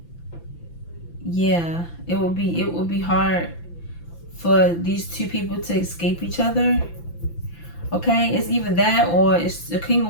Yeah, it would be hard for these two people to escape each other. Okay, it's either that or it's the King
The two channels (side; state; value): right; late; 5.9 ms